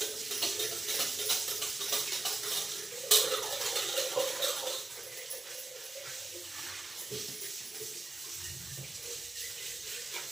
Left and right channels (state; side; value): quieter; left; 3.1 dB